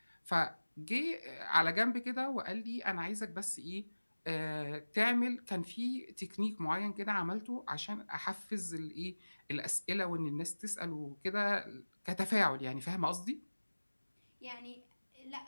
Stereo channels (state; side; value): inverted; both; correlation -1.00